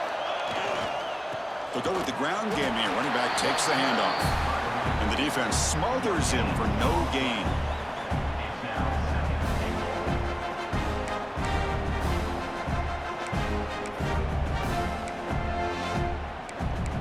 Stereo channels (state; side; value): identical; both; correlation 1.00